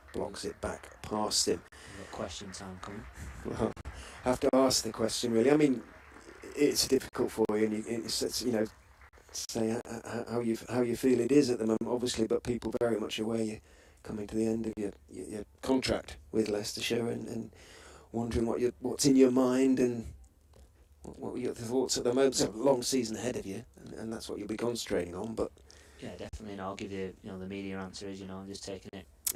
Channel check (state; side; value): identical; both; correlation 1.00